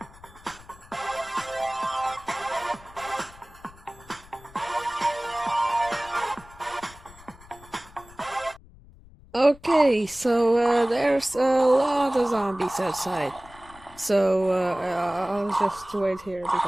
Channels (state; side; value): noise; left; rumble, 22 dB below the sound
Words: Okay, so there's a lot of zombies outside. So I'll just wait here